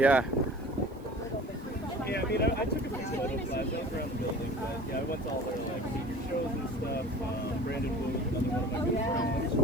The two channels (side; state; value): right; noise; hiss, 29 dB below the sound